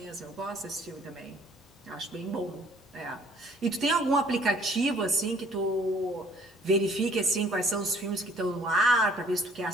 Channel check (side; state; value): both; normal; correlation 0.58